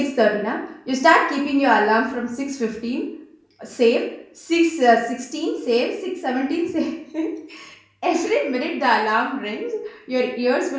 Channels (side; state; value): both; identical; correlation 1.00